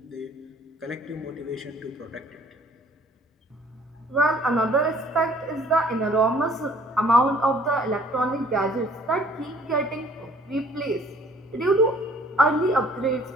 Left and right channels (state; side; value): normal; both; correlation 0.57